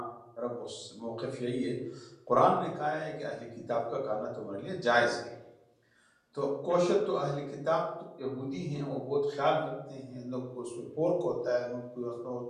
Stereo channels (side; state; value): both; identical; correlation 1.00